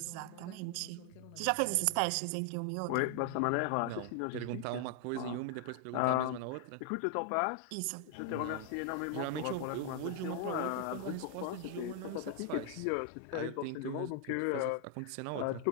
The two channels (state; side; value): different; both; correlation 0.00